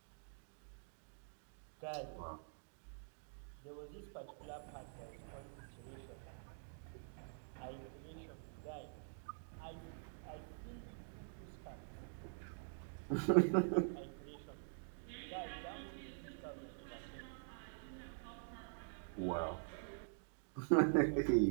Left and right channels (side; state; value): left; silent; digital silence